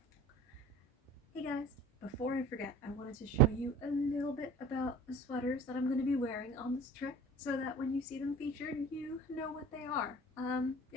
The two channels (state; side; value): normal; both; correlation 0.42